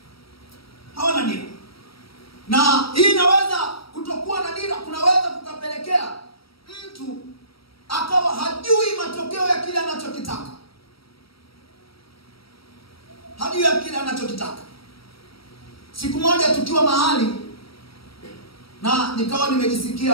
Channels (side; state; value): right; late; 0.75 ms